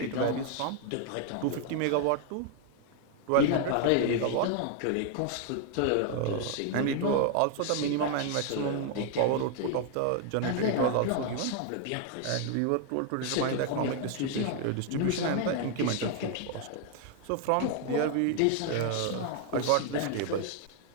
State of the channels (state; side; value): different; both; correlation 0.00